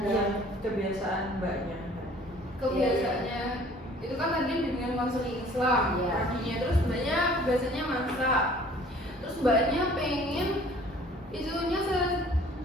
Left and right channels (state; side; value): normal; both; correlation 0.52